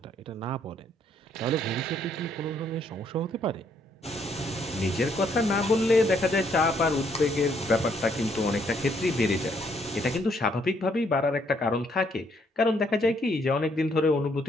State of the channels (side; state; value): both; normal; correlation 0.70